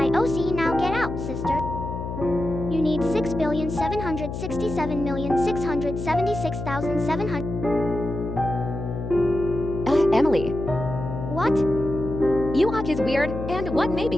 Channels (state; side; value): noise; left; hum, 6 dB below the sound